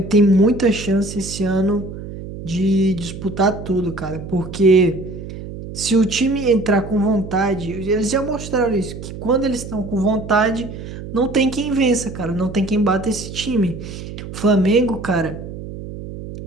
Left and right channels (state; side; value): noise; right; hum, 11 dB below the sound